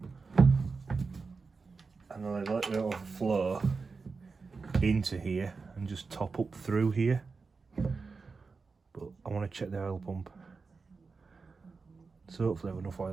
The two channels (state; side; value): quieter; left; 4.5 dB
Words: and then I let it overflow into here and just top up through here. But I want to check the oil pump, so hopefully I have enough